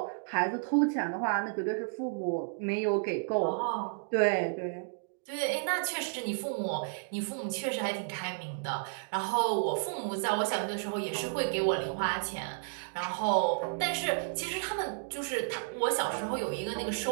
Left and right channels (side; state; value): left; silent; digital silence